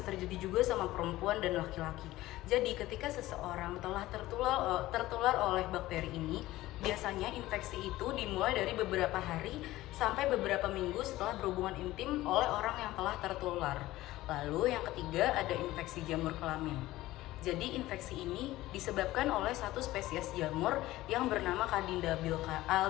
terjadi juga sama perempuan dan laki-laki. Jadi ketika seseorang telah tertular oleh bakteri ini, biasanya infeksi itu dimulai dari beberapa hari sampai beberapa minggu setelah berhubungan intim oleh orang yang telah tertular. Lalu yang ketiga ada infeksi jamur kelamin. Jadi infeksi ini disebabkan oleh satu spesies jamur yang bernama Candida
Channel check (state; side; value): quieter; right; 16.8 dB